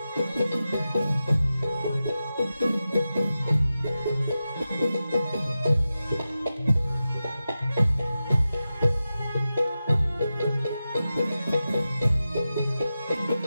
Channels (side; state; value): both; inverted; correlation -0.93